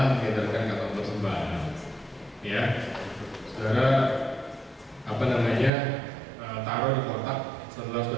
mengedarkan kantong persembahan, ya. Saudara taruh di kotak setelah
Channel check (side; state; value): left; drops out; at 5.7 s